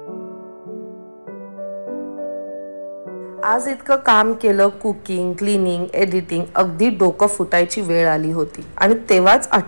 आज इतकं काम केलं, कुकिंग, क्लिनिंग, एडिटिंग, अगदी डोकं फुटायची वेळ आली होती. आणि तेव्हाच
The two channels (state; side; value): inverted; both; correlation -1.00